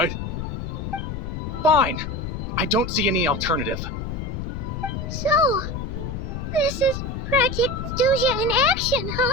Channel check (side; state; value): left; noise; rumble, 5 dB below the sound